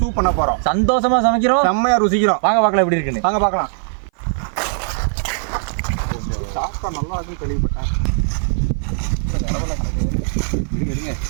சூப் பண்ண போறோம். சந்தோஷமா சமைக்கிறோம், செம்மையா ருசிக்கிறோம். வாங்க பார்க்கலாம் எப்படி இருக்குன்னு. வாங்க பார்க்கலாம். சாப்பிட்டா நல்லா இருக்குன்னு கேள்விப்பட்டேன். எடுங்க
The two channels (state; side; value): silent; left; 56 dB below the other